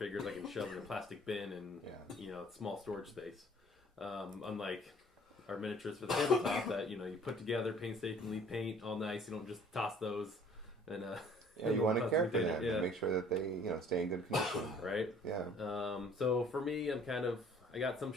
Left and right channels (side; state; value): both; normal; correlation 0.54